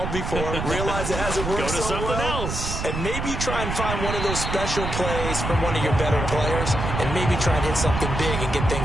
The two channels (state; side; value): noise; right; rumble, 3 dB below the sound